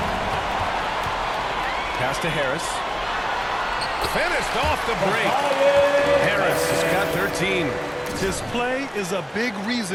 Pass to Harris. Finished off the break. Harris has got 13. His play is a big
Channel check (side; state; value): both; identical; correlation 1.00